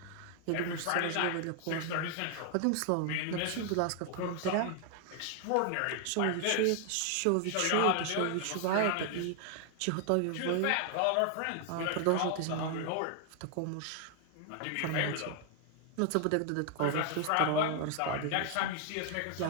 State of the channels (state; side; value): different; both; correlation 0.00